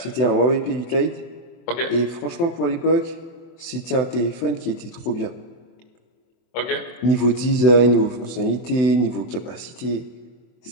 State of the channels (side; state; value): right; late; 24 ms